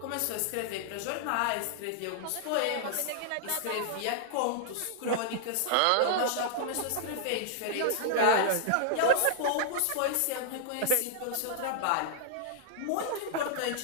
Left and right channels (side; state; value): both; different; correlation -0.01